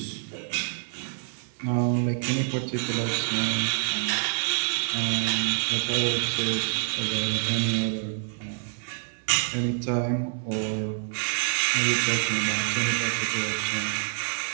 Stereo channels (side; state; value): left; silent; 60 dB below the other